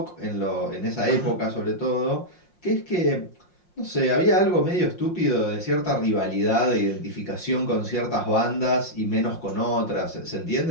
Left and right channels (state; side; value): late; right; 5.6 ms